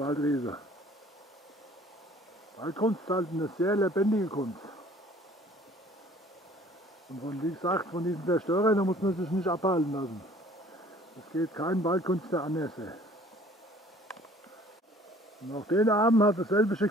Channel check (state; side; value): normal; both; correlation 0.53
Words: Waldkunst ist halt eine sehr lebendige Kunst. Und von, wie gesagt, von diesen Zerstörern da muss man sich nicht abhalten lassen. Es geht kein Waldkünstler anders. Und auch den Abend hat dasselbe